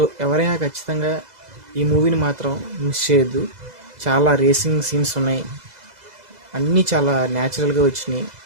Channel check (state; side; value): late; left; 2.0 ms